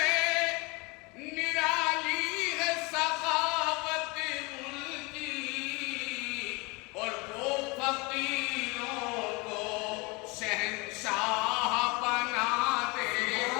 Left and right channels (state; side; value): quieter; right; 27.1 dB